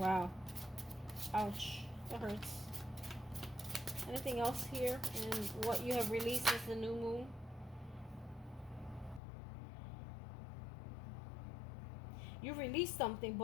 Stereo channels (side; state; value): right; drops out; at 9.2 s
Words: Ouch. That hurts. Anything else here in what you have released since the new moon? You released something,